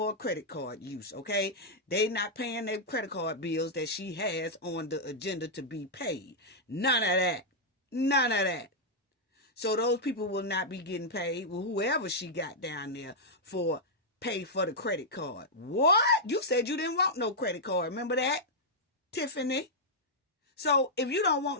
credit card use, okay? They not paying their credit card bills that she has on the agenda to be paid. None of that. None of that. So those people will not be getting paid. Well, whoever she got down there for pay for the credit card. What? You said you didn't want no credit card. Remember that, Tiffany? So if you don't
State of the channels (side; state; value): both; normal; correlation -0.06